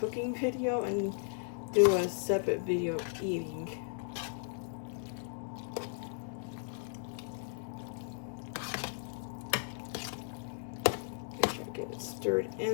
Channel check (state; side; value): silent; right; 54 dB below the other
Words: cooking video and do a separate video of eating. Get it stirred